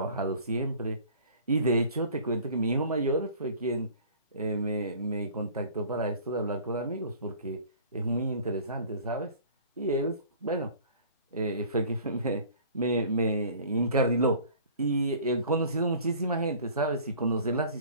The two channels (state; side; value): inverted; both; correlation -0.48